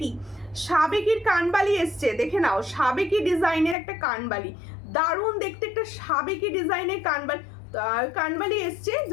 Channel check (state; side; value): drops out; right; at 3.8 s